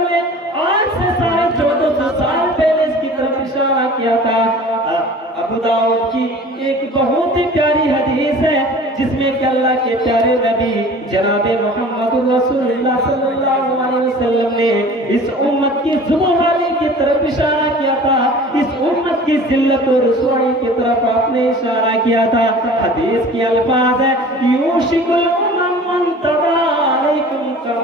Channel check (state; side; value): normal; both; correlation 0.43